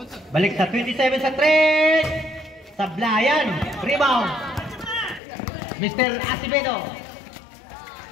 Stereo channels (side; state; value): right; drops out; at 5.2 s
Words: Balik sa 27 sa 3. Sablayan. Rebound. Mr. Acevedo.